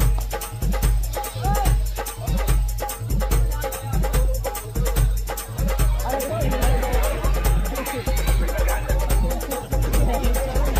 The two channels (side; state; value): both; identical; correlation 1.00